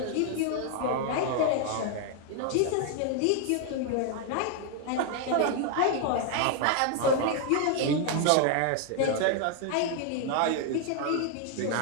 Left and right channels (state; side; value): different; both; correlation 0.00